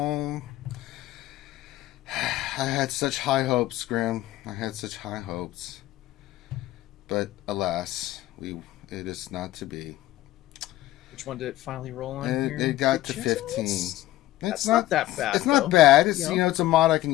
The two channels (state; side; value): quieter; right; 15.3 dB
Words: I had such high hopes, Grim. I had such high hopes. But, alas, it is not to be. Which one did it finally roll on here? It got to 15. It's not that bad. It's not bad. It's, it's a mod I can